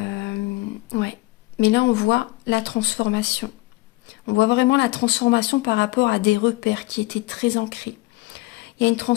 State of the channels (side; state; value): right; quieter; 21.2 dB